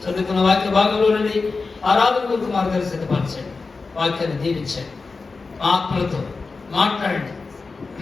చదువుకున్న వాక్య భాగంలో నుండి ఆరాధన కొరకు మార్గాలు సిద్ధపరచండి, వాక్యాన్ని దీవించండి, మా ఆత్మలతో మాట్లాడండి,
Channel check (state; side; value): quieter; right; 4.2 dB